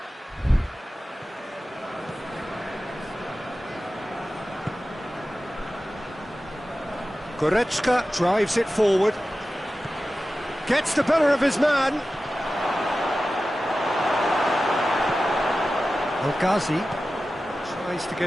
Goretzka drives it forward. Gets the better of his man. El-Ghazi tries to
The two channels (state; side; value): normal; both; correlation 0.94